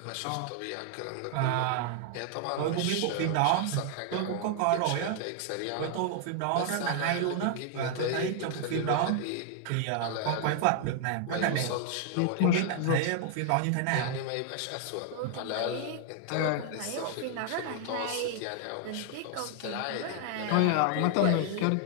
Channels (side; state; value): both; different; correlation 0.00